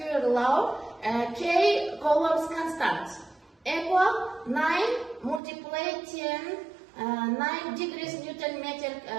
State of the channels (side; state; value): left; drops out; at 5.4 s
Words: law, K Coulomb's constant equal 9 multiply 10 9 degrees Newton meter